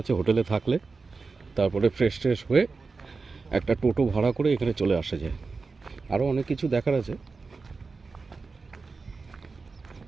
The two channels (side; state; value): left; quieter; 4.3 dB